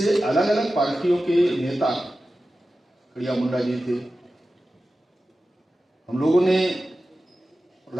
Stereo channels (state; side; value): normal; both; correlation 0.94